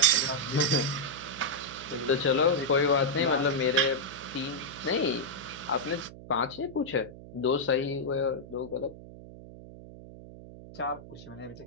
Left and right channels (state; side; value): noise; right; hum, 16 dB below the sound